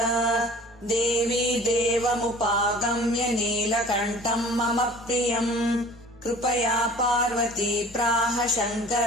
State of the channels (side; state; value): both; normal; correlation 0.46